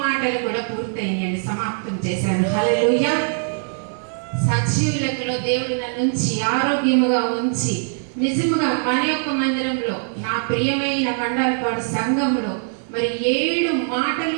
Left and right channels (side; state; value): left; silent; 55 dB below the other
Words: మాటలు కూడా పూర్తయినాయండి, సమాప్తం చేశాను. హల్లెలూయా. సజీవులలో దేవుడు నన్ను ఉంచి ఆరోగ్యముగా ఉంచి నిజముగా మన యొక్క మందిరంలో నా ప్రియమైన మండలపాడు సంఘంలో మరి 7